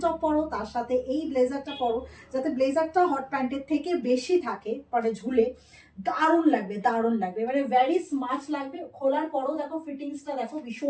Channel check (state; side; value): identical; both; correlation 1.00